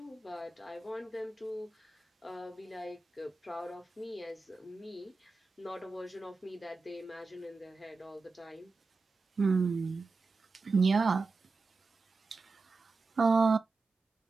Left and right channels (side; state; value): left; quieter; 3.8 dB